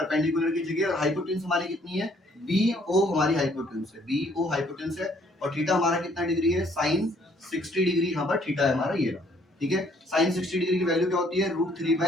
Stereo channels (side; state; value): both; normal; correlation 0.64